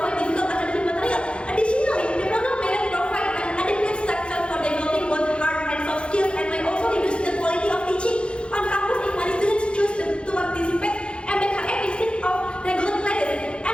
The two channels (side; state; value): right; late; 0.057 ms